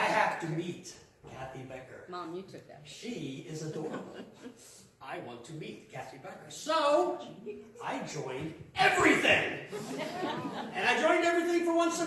have to meet Kathy Becker. Mom, you took that. She is adorable. I want to meet Kathy Becker. So, I joined everything. And I joined everything for one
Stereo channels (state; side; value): identical; both; correlation 1.00